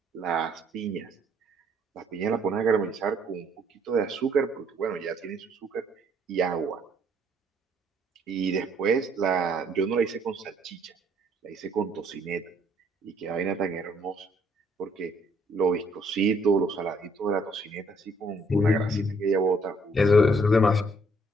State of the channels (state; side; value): normal; both; correlation 0.65